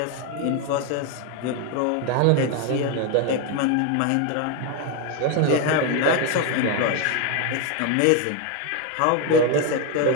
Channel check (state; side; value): different; both; correlation 0.02